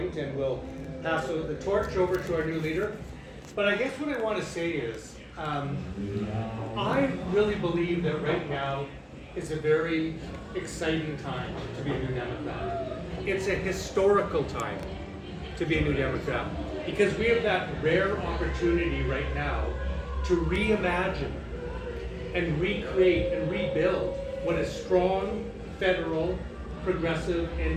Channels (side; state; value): both; identical; correlation 1.00